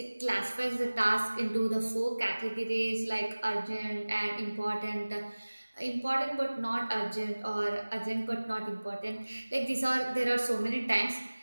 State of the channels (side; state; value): both; inverted; correlation -1.00